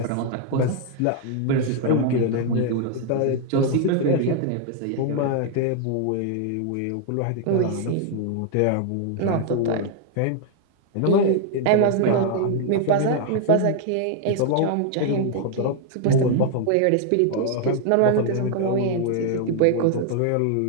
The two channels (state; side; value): different; both; correlation 0.00